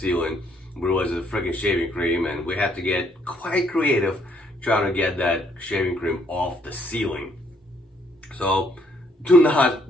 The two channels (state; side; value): normal; both; correlation 0.68